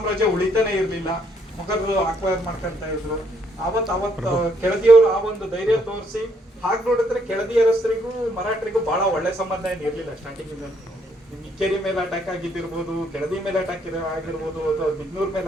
ಉಳಿತಾನೆ ಇರ್ಲಿಲ್ಲ. ಮೊಘಲರು ಅಕ್ವೈರ್ ಮಾಡ್ಕೊಂತ ಇದ್ರು. ಅವತ್ತು ಕೆಳದಿಯವರು ಆ ಒಂದು ಧೈರ್ಯ ತೋರಿಸಿ ಹಾಗೆ ನೋಡಿದ್ರೆ ಕೆಳದಿಯರಸರಿಗೂ ಮರಾಠರಿಗೂ ಬಹಳ ಒಳ್ಳೆ ಸಂಬಂಧ ಏನು ಇರ್ಲಿಲ್ಲ ಸ್ಟಾರ್ಟಿಂಗ್. ಇಕ್ಕೇರಿ ಮೇಲೆ ಅಟ್ಯಾಕ್ ಆಗಿದ್ದಿರ್ಬೋದು, ಕೆಳದಿ ಮೇಲೆ ಅಟ್ಯಾಕ್ ಆಗಿರ್ಬೋದು, ಅಥವಾ ಬಿಗ್ನೂರ್ ಮೇಲೆ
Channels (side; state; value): both; normal; correlation 0.71